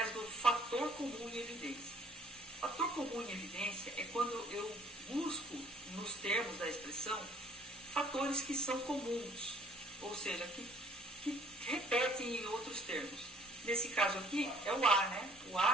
do fator comum em evidência? Fator comum em evidência é quando eu busco, nos termos da expressão, fatores que são comuns, ou seja, que repetem em outros termos. Nesse caso aqui, é o A, né? O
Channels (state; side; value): normal; both; correlation 0.58